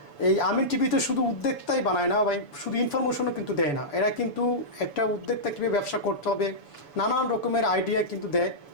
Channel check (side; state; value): right; late; 7.0 ms